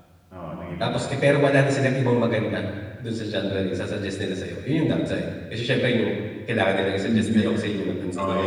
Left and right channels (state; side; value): identical; both; correlation 1.00